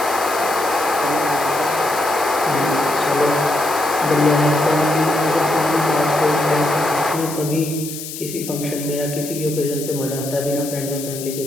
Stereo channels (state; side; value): noise; left; hiss, 10 dB below the sound